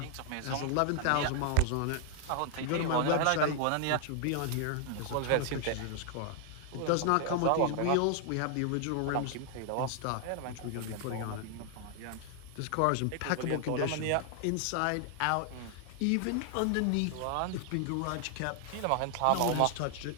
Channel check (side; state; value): both; different; correlation 0.00